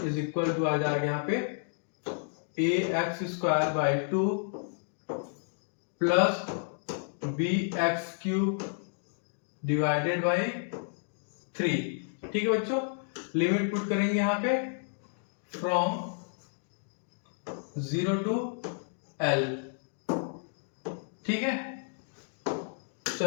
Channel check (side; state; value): right; silent; digital silence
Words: is equal to आ जाएगा यहाँ पे ax square by 2 plus bx cube divided by 3। ठीक है बच्चों, लिमिट पुट करेंगे यहाँ पे फ्रॉम 0 टू L। ठीक है, तो